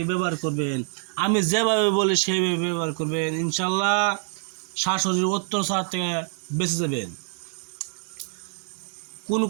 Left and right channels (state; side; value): silent; left; 57 dB below the other